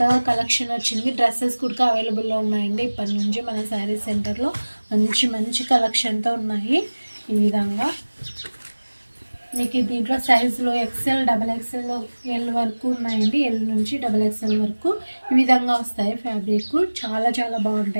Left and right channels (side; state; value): both; inverted; correlation -1.00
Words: కలెక్షన్ వచ్చింది. డ్రెస్సెస్ కూడా అవైలబుల్లో ఉన్నాయండి. ఇప్పటి నుంచి మన శారీస్ సెంటర్లో మంచి మంచి కలెక్షన్తో ఉన్నాయి. ఈ విధంగా మీకు దీంట్లో సైజులో ఎక్సెల్, డబల్ ఎక్సెల్, ఎల్ వరకు ఉన్నాయండి. ఎల్ నుంచి డబల్ ఎక్సెల్ వరకు ఈ విధంగా వస్తాయి. ఫ్యాబ్రిక్ చాలా చాలా